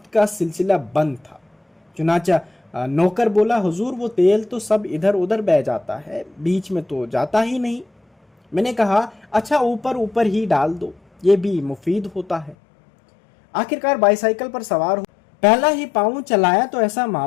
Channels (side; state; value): right; drops out; at 12.6 s